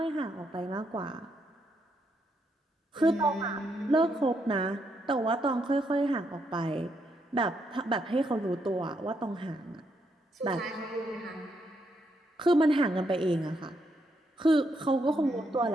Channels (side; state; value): both; normal; correlation 0.78